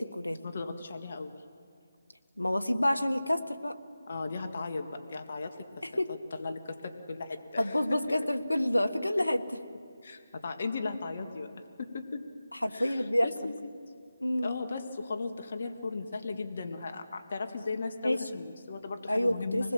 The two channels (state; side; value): inverted; both; correlation -0.95